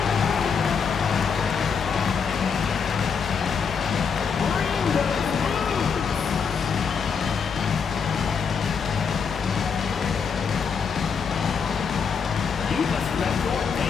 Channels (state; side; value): quieter; right; 6.1 dB